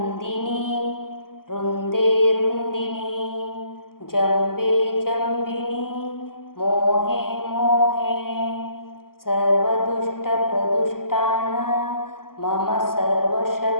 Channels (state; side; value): late; right; 0.92 ms